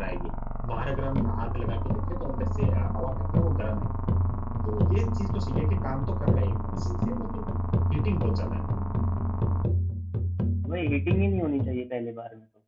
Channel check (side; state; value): both; identical; correlation 1.00